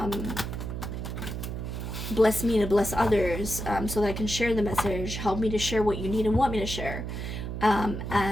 bless me to bless others, so that I can share the message, help me to share what you need and want me to share. And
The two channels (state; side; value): noise; right; hum, 5 dB below the sound